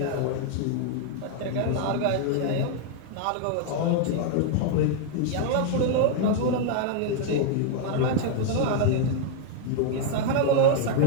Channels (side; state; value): both; different; correlation 0.00